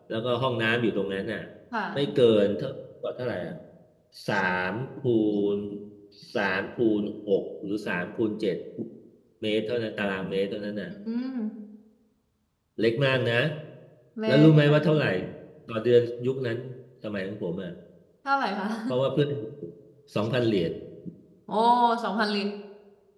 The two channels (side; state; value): both; identical; correlation 1.00